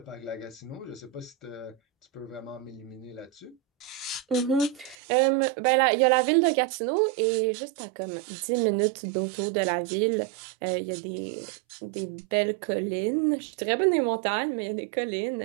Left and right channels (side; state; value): left; drops out; at 5.0 s